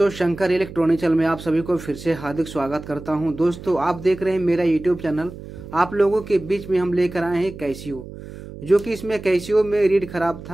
Shankar electronic channel में आप सभी को फिर से हार्दिक स्वागत करता हूं। दोस्तों, आप देख रहे हैं मेरा यूट्यूब चैनल। आप लोगों के बीच में हम लेकर आए हैं कैसियो, जो कि इसमें कैसियो में रीड खराब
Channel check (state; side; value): noise; right; hum, 14 dB below the sound